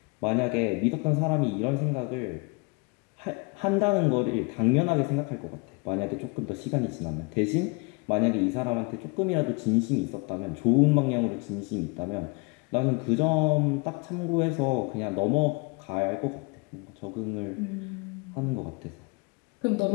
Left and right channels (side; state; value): right; quieter; 30.6 dB